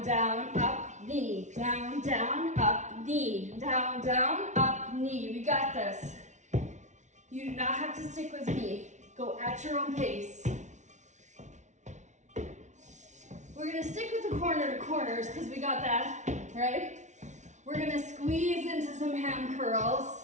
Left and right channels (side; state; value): left; late; 0.35 ms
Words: down, up, knee. Down, down, up, knee. Down, down, up, knee. We got this. You do not have to stick with me. Go at your own pace. We're gonna stick with the corner to corners because we got that, right? We're gonna squeeze into some ham